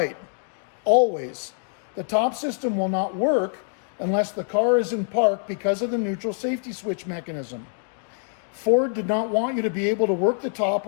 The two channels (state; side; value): silent; right; 62 dB below the other